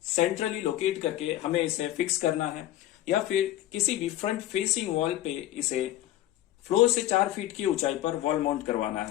सेंट्रली लोकेट करके हमें इसे फिक्स करना है, या फिर किसी भी फ्रंट फेसिंग वॉल पे इसे फ्लोर से 4 फीट की ऊंचाई पर वॉल माउंट करवाना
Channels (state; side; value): quieter; right; 13.9 dB